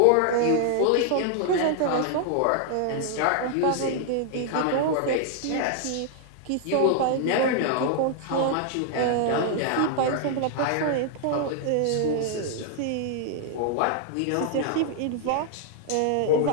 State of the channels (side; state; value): both; different; correlation 0.00